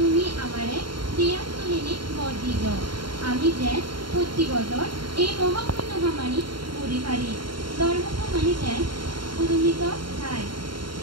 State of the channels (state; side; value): late; left; 0.73 ms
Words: আমারে দিয়া তুলিনি বর দিল আমি যে প্রতি বছর এই মহাপুণ্য ভামানি পড়ি পারি ধর্মভামানি যেন উদমিত খায়